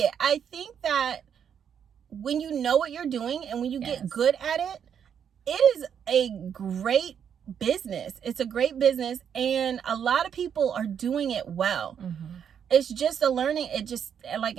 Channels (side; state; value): left; quieter; 8.1 dB